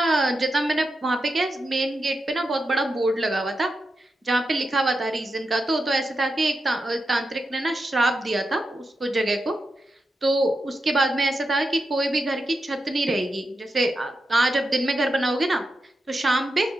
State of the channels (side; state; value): both; normal; correlation 0.88